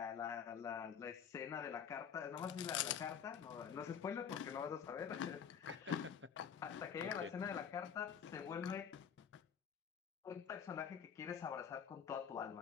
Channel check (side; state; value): right; quieter; 7.7 dB